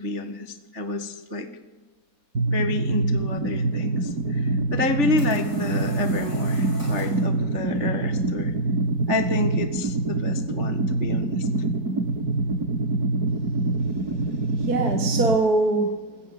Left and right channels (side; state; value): left; late; 3.4 ms